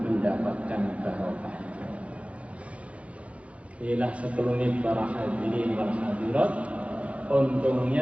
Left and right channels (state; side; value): late; left; 0.063 ms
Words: mendapatkan barokah. Inilah sekelumit para hadirin wal hadirat,